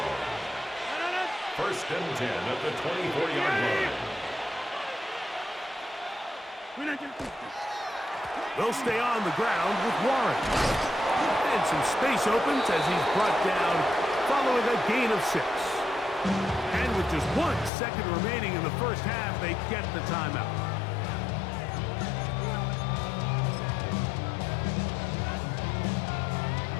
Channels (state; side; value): drops out; right; at 17.7 s